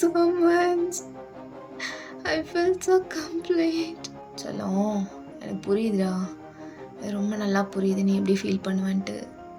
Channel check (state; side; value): identical; both; correlation 1.00